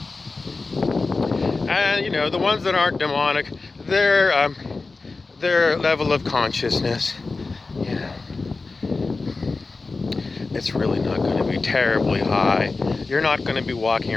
And, you know, the ones that aren't demonic, their level of consciousness, you know, it's really not going to be terribly high. You're not going to be walking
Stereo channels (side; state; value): right; quieter; 3.8 dB